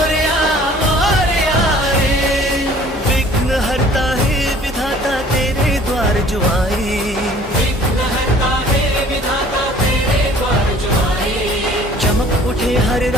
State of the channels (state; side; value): normal; both; correlation 0.52